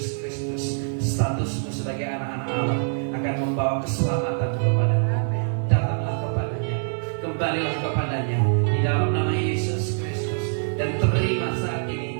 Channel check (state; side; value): silent; left; digital silence